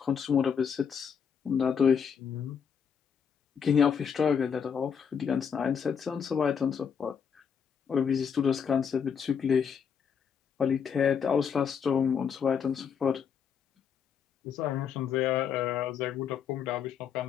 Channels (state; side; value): quieter; right; 7.1 dB